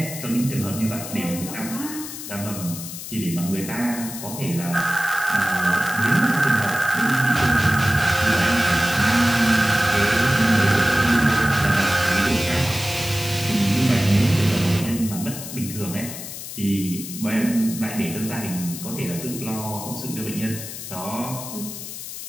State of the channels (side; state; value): left; noise; hiss, 10 dB below the sound